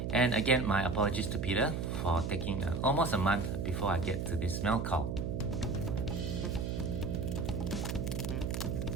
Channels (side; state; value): right; noise; hum, 2 dB below the sound